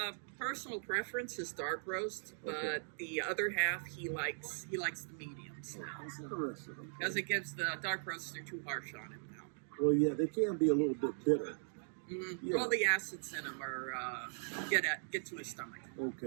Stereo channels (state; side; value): silent; left; digital silence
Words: Personal preference is dark roast, but the other half he likes the mediums now. That's interesting. Okay. Because it gives the dark roasts are too harsh on him now. Well, yeah, they can be a little bit bitter. Mm-hmm. Yeah. Well, the acids in them are get to his stomach.